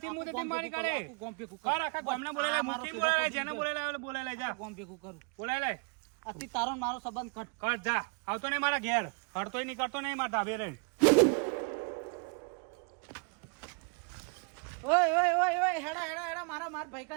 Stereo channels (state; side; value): quieter; left; 35.4 dB